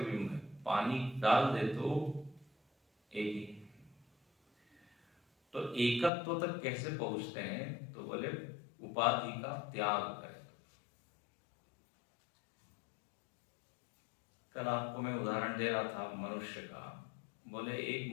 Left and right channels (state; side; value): drops out; right; at 6.1 s